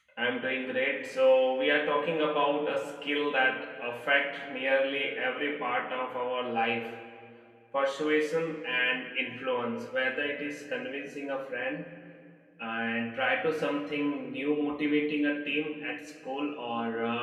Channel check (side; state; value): both; identical; correlation 1.00